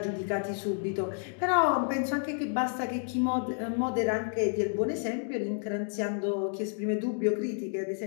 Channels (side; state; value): right; silent; 58 dB below the other